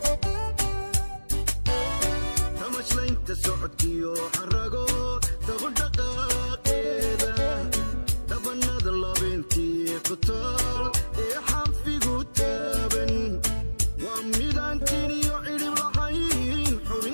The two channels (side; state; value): both; inverted; correlation -1.00